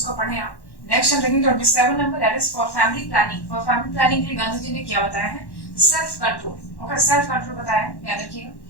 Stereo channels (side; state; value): right; late; 1.1 ms